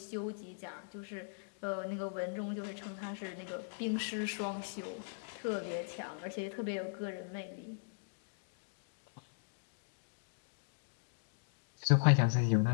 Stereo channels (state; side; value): silent; right; digital silence